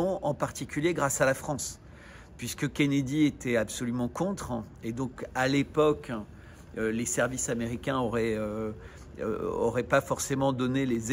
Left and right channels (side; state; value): both; identical; correlation 1.00